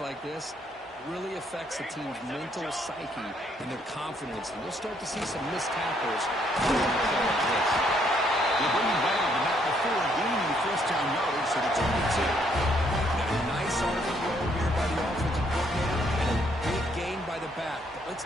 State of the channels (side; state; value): both; normal; correlation 0.69